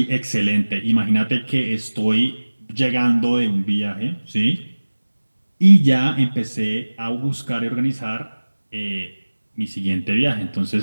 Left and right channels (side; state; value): both; inverted; correlation -1.00